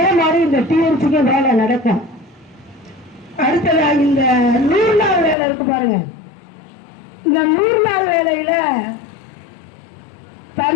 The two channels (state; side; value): drops out; right; at 5.4 s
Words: மாதிரி இந்த டிஎம்சிக்கு வேலை நடக்கும். அடுத்ததா இந்த 100 நாள் வேலை இருக்கு பாருங்க. இந்த 100 நாள் வேலையில